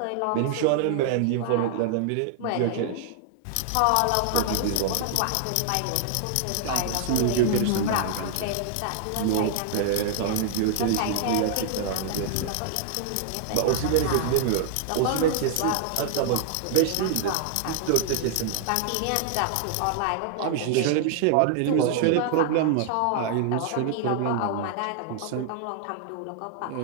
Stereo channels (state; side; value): different; both; correlation 0.00